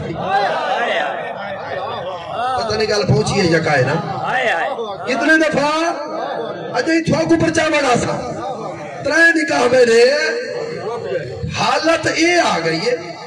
پتہ نہیں گل پہنچی ہے یکا ہے نا کتنے دفعہ اچھا ہی تھوا کو پرچامن آسا ترائے نکاح میں نے حالت اے آ گئی ہے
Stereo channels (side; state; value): both; identical; correlation 1.00